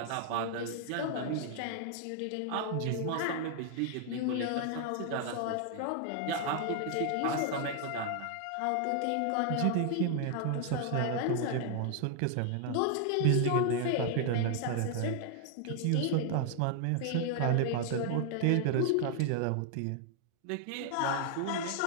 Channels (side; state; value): both; different; correlation 0.00